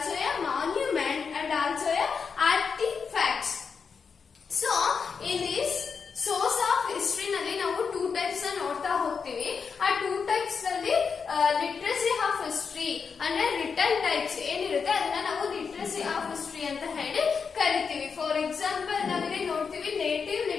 a monument and also a artifacts. So in this source of history ನಲ್ಲಿ ನಾವು 2 types ನೋಡ್ತಾ ಹೋಗ್ತೀವಿ. ಆ 2 types ನಲ್ಲಿ literacy of history ಅಂದ್ರೆ return types ಏನಿರುತ್ತೆ ಅದನ್ನ ನಾವು ಲಿಟ್ರಸಿ ಆಫ್ ಹಿಸ್ಟ್ರಿ ಅಂತ ಹೇಳಿ ಕರಿತೀವಿ. ಫಾರ್ ಎಕ್ಸಾಂಪಲ್ ನಾವಿಲ್ಲಿ ನೋಡ್ತೀವಿ native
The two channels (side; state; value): right; quieter; 5.8 dB